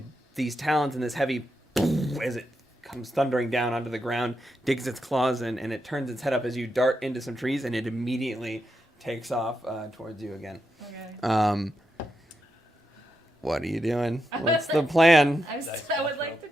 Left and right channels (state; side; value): normal; both; correlation 0.84